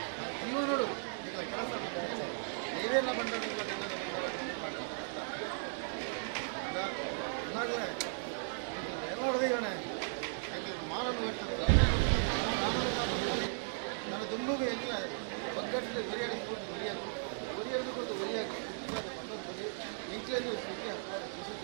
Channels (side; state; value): left; silent; digital silence